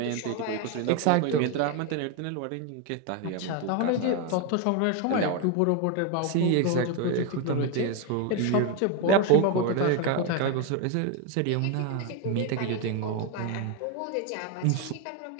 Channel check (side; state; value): both; different; correlation 0.02